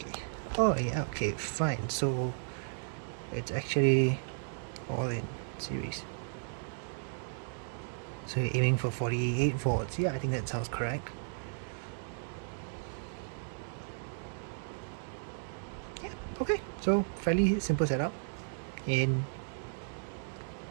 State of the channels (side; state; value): left; silent; digital silence